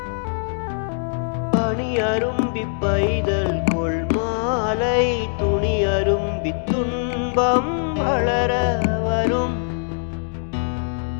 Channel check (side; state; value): right; silent; digital silence